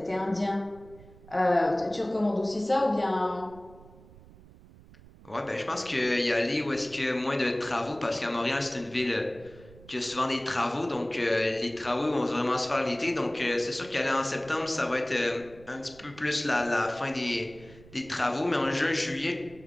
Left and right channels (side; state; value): right; noise; rumble, 22 dB below the sound